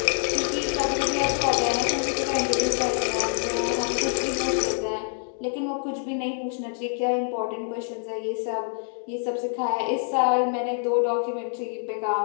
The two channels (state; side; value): silent; right; 59 dB below the other